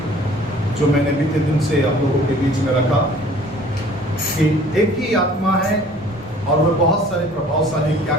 जो मैंने बीते दिन से आप लोगों के बीच में रखा कि एक ही आत्मा है और वह बहुत सारे प्रभावशाली क्या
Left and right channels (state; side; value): normal; both; correlation 0.51